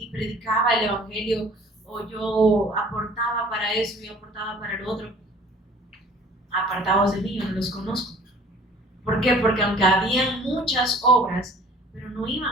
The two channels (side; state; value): both; normal; correlation 0.51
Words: predicaba el Evangelio, o yo aportaba para eso y aportaba para el otro. Apartados de mí, yo no los conozco. ¿Por qué? Porque aunque habían muchas obras, pero no